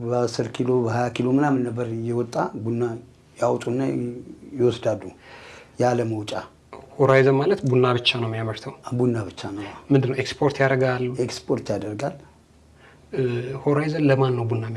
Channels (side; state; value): both; identical; correlation 1.00